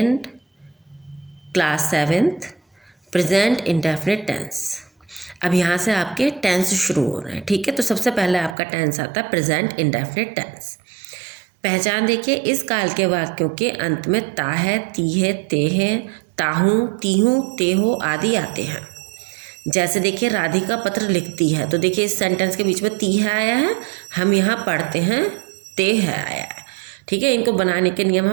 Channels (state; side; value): drops out; left; at 8.6 s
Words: class 7th, present indefinite tense. अब यहाँ से आपके tense शुरू हो रहे हैं, ठीक है। तो सबसे पहले आपका टेंस आता है प्रेजेंट इंडेफिनिट टेंस। पहचान देखिए, इस काल के वाक्यों के अंत में ता है, ती है, ते है, ताहूँ, तीहूँ, तेहो आदि आते हैं। जैसे देखिए, राधिका पत्र लिखती है, तो देखिए इस सेंटेंस के बीच में ती है आया है, हम यहाँ पढ़ते हैं ते है आया है, ठीक है। इनको बनाने के नियम